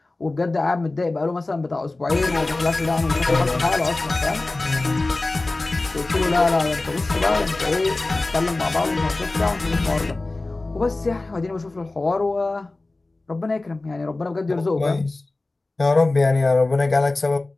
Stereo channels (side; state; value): right; quieter; 3.1 dB